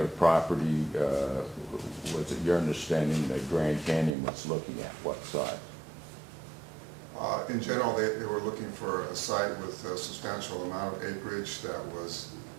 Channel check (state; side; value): drops out; left; at 4.2 s